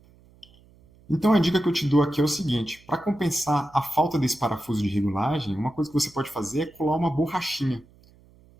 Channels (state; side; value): noise; right; hum, 28 dB below the sound